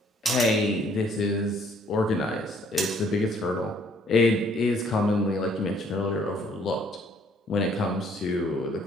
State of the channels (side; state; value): both; normal; correlation 0.63